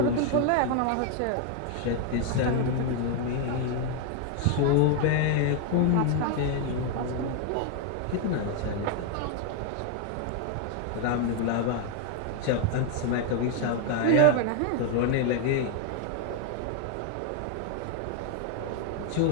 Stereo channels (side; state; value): both; different; correlation 0.00